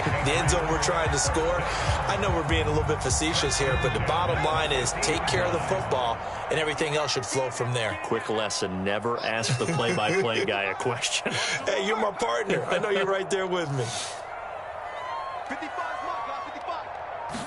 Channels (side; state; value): both; identical; correlation 1.00